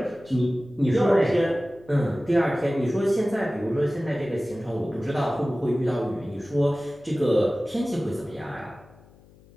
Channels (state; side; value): noise; left; hum, 26 dB below the sound